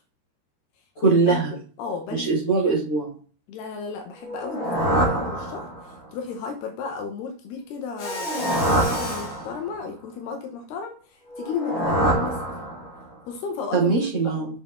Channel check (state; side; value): late; right; 13 ms